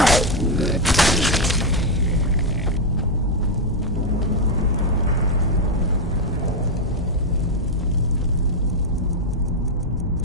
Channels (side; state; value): both; normal; correlation 0.04